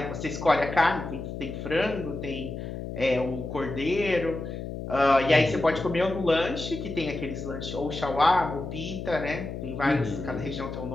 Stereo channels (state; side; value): noise; left; hum, 7 dB below the sound